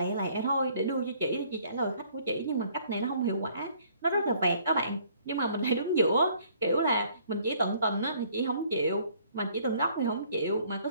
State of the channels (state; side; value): inverted; both; correlation -0.60